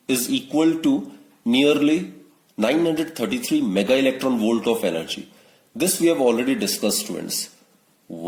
is equal to nearly 933 mega electron volt of energy. This we have already discussed, students.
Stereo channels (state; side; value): identical; both; correlation 1.00